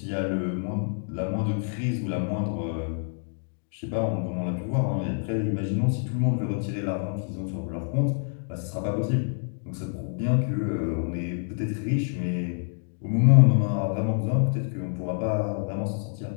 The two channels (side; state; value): right; silent; 60 dB below the other